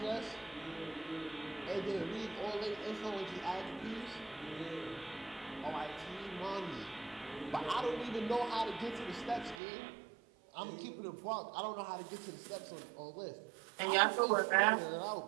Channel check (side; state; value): left; drops out; at 9.6 s